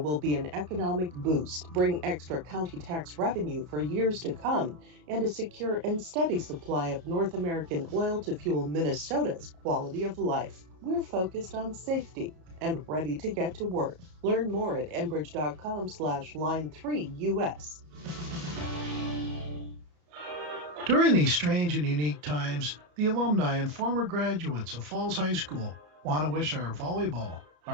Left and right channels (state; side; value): late; left; 33 ms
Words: be an economic boost, bring extra county tax revenue for years to come, and a secure and steady supply of North American oil to fuel Minnesota's quality of life. We're focused on safety and ready to get to work. Learn more at enbridge.com/line3us. During these strange and unique times, the alumni and former graduates of Falls High School want to wish our volleyball,